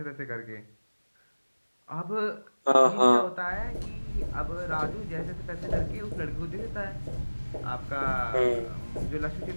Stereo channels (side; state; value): both; inverted; correlation -1.00